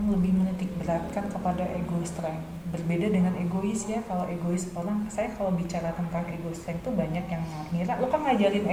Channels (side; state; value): both; identical; correlation 1.00